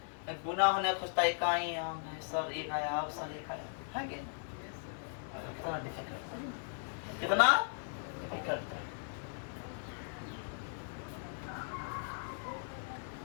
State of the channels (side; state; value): right; silent; 53 dB below the other